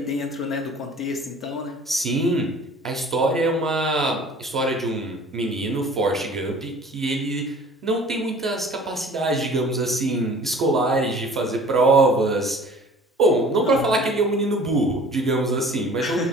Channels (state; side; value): normal; both; correlation 0.48